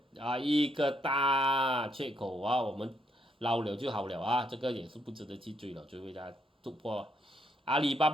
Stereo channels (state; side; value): normal; both; correlation 0.75